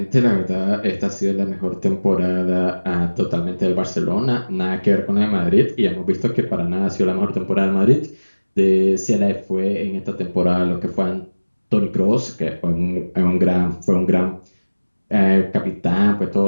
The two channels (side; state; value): both; inverted; correlation -1.00